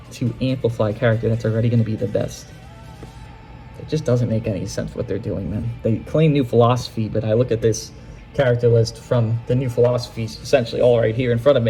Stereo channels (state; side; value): identical; both; correlation 1.00